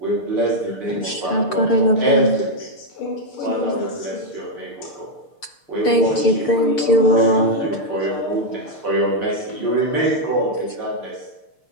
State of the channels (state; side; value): late; right; 6.7 ms